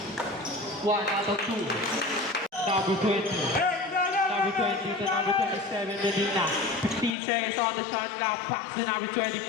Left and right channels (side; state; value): right; drops out; at 7.2 s